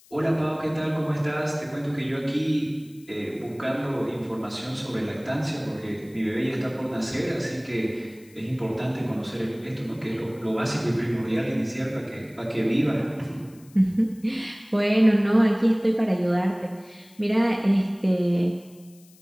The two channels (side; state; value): left; noise; hiss, 27 dB below the sound